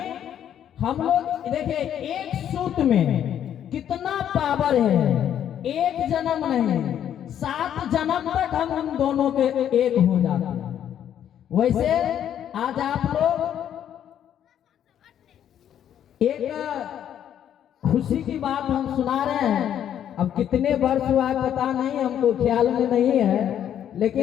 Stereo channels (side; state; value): right; quieter; 10.0 dB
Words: हम लोग देखिए, एक सूत्र में कितना पावर है। एक जन्म नहीं, 7 जन्म तक हम दोनों के एक हो जाते हैं। वैसे आज आप लोग एक खुशी की बात हम सुना रहे हैं। अब कितने वर्ष हुआ पता नहीं, हमको ख्याल में नहीं है,